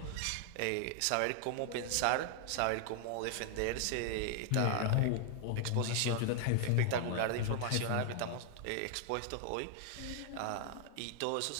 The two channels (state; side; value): different; both; correlation 0.00